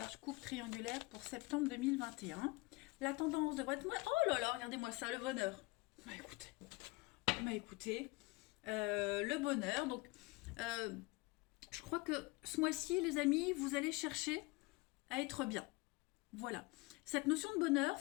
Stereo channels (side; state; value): right; quieter; 24.4 dB